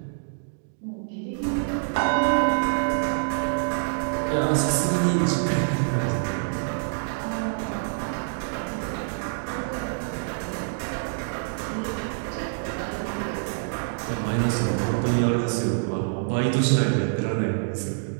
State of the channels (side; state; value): left; silent; digital silence